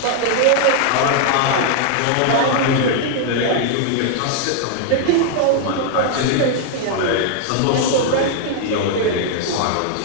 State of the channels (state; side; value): different; both; correlation 0.00